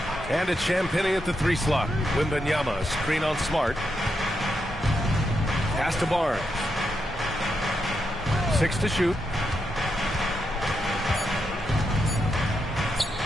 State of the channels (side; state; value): both; normal; correlation 0.83